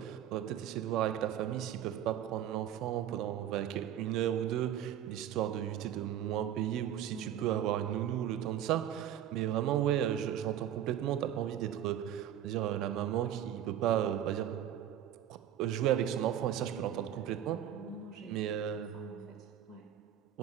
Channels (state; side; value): quieter; left; 10.6 dB